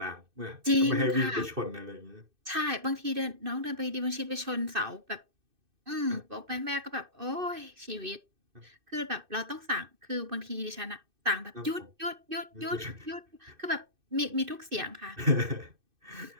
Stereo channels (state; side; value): late; left; 2.6 ms